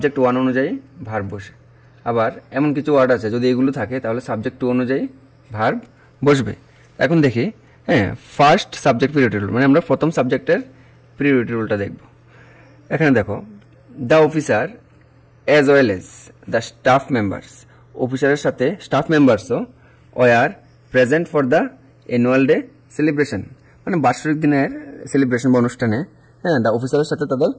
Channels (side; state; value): both; identical; correlation 1.00